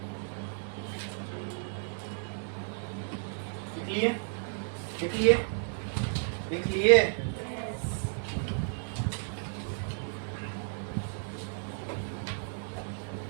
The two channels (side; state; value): left; silent; 56 dB below the other